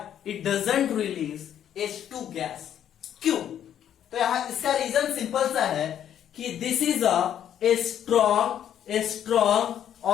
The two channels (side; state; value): right; quieter; 10.0 dB